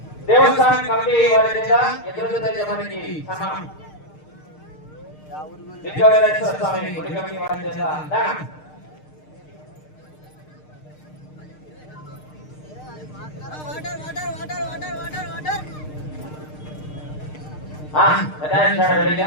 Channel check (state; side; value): late; right; 6.6 ms